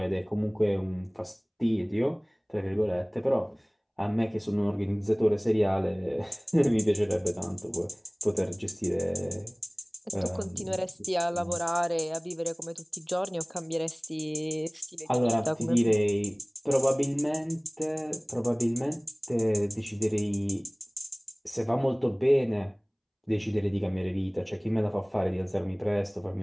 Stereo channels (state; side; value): identical; both; correlation 1.00